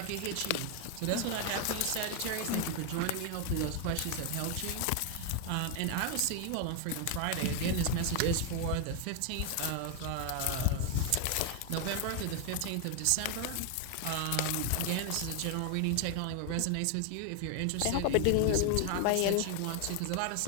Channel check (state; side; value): different; both; correlation 0.01